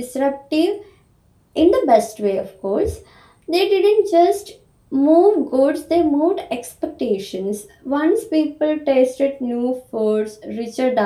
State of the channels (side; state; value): both; identical; correlation 1.00